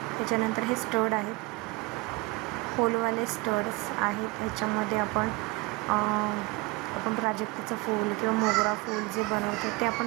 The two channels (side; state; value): left; quieter; 24.4 dB